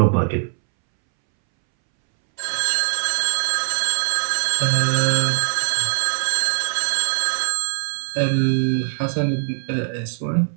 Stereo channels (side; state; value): left; silent; 65 dB below the other